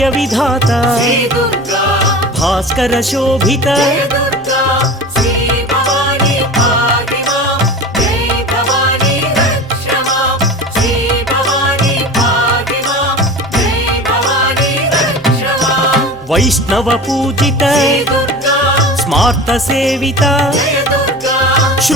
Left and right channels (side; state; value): right; noise; hum, 25 dB below the sound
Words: विधाता भास्कर शोभित वैष्णव पूजित स्मार्त सेविता